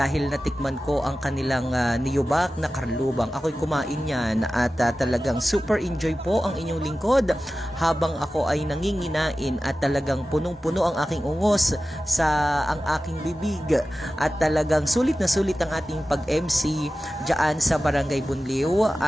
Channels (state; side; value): normal; both; correlation 0.95